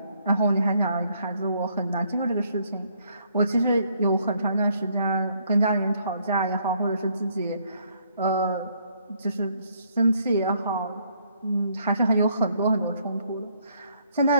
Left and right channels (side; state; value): both; inverted; correlation -0.68